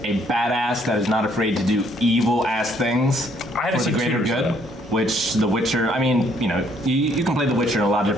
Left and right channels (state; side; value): normal; both; correlation 0.66